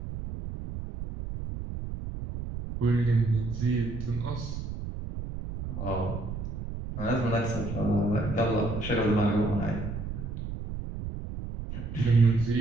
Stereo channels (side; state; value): right; noise; rumble, 7 dB below the sound